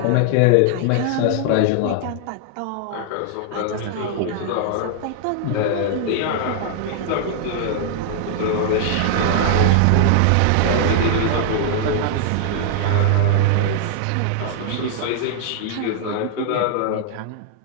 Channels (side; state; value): both; different; correlation -0.01